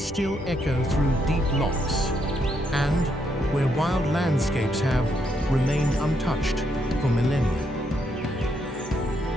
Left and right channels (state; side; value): normal; both; correlation 0.76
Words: echo through deep lochs, and where wild landscapes have remained untouched for millennia?